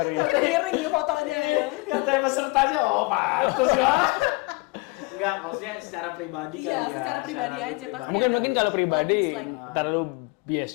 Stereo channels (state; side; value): quieter; right; 26.7 dB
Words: ya. Mungkin miring fotonya ya. Katanya pesertanya, oh pantas ya. Enggak, maksudnya secara pribadi kali Iya, ya. secara pribadi aja pasti Mungkin ada mungkin kalau pribadi like, dislike. terlalu bias